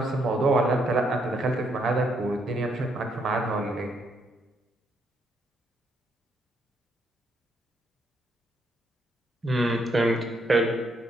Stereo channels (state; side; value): normal; both; correlation 0.74